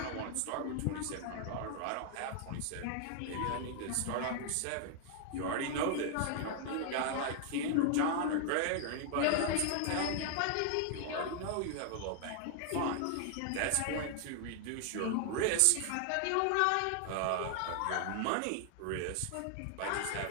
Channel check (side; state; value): both; different; correlation 0.00